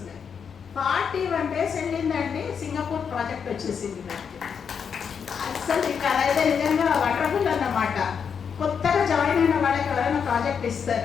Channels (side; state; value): right; quieter; 6.8 dB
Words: 41 days వెళ్ళిందండి, సింగపూర్ ప్రాజెక్ట్ వచ్చేసింది నాకు. అసలు ఇక అదైతే నిజంగా వండర్ఫుల్ అన్నమాట. కొత్తగా జాయిన్ అయిన వాళ్ళకి ఎవరైనా ప్రాజెక్ట్